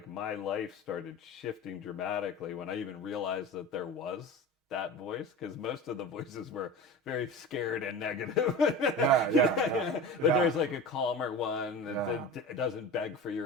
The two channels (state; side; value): normal; both; correlation 0.32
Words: my life started shifting dramatically when I even realized that there was that voice, because most of the voices were very scared and negative. Yeah. But there's like a calmer one that Yeah. doesn't beg for